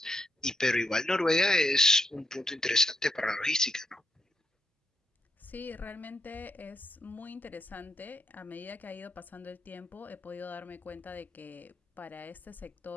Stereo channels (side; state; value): both; normal; correlation 0.81